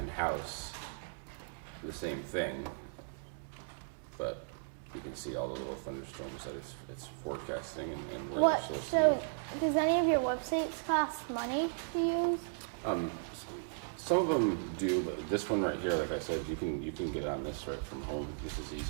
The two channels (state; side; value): silent; left; digital silence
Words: the same thing, but you can see all the little thunderstorms that it's forecasting and where What? they're supposed So to does any of your websites cost money to use? be. Some of them do, but this one right here, like I said, you can get on this right from home. This is